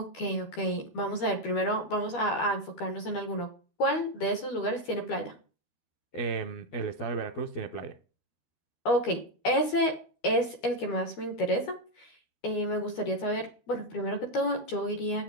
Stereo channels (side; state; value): right; late; 12 ms